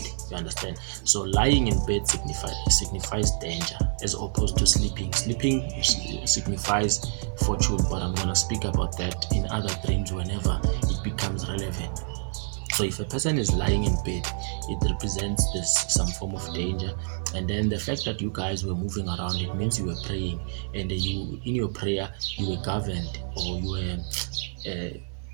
You understand? So lying in bed signifies danger, as opposed to sleeping. Sleeping signifies fortune, but I'm gonna speak about that in other dreams whenever it becomes relevant. So if a person is lying in bed, it represents some form of danger. And then the fact that you guys were moving around, it means you were praying, and in your prayer you were governed, or you were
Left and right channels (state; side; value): silent; left; digital silence